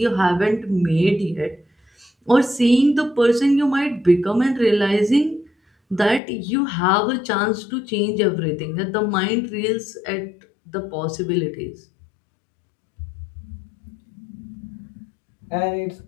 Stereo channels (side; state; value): right; drops out; at 6.2 s